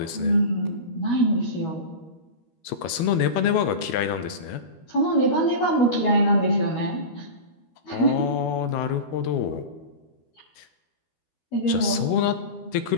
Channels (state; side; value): late; right; 13 ms